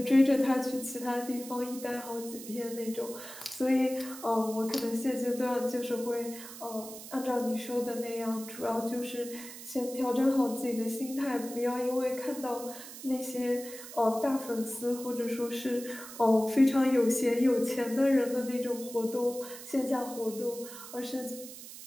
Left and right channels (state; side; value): noise; right; hiss, 13 dB below the sound